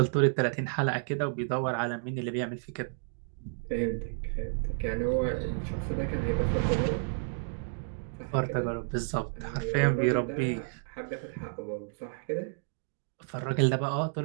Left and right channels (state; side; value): silent; left; digital silence